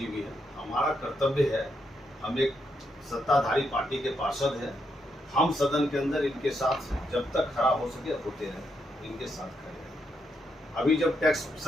भी हैं। हमारा कर्तव्य है, हम एक सत्ताधारी पार्टी के पार्षद हैं, हम सदन के अंदर इनके साथ जब तक खड़ा हो सके होते रहे, इनके साथ खड़े रहे। अभी जब टैक्स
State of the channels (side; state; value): both; normal; correlation 0.80